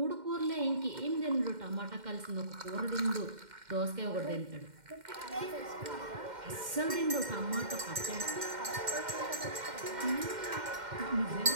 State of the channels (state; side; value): late; left; 2.1 ms